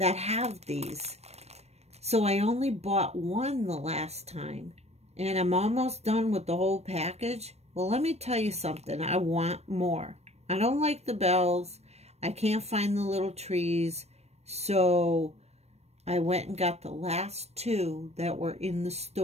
have these. So I only bought one the last time. And I'm almost done with the whole package. Well, let me tell you something. I want more. I don't like the bells. I can't find the little trees. So I went and got the last two that were in the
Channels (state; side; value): late; left; 0.31 ms